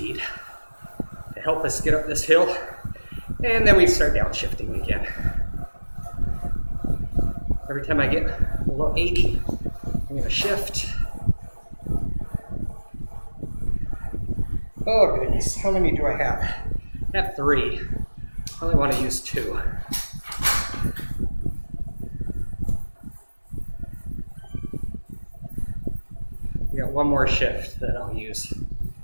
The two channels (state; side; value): inverted; both; correlation -1.00